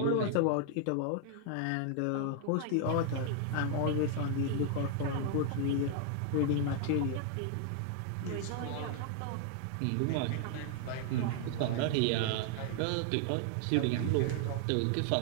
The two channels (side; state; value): both; different; correlation 0.00